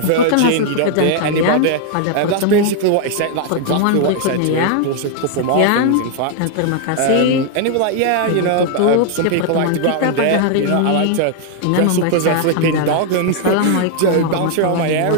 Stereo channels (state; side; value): different; both; correlation 0.00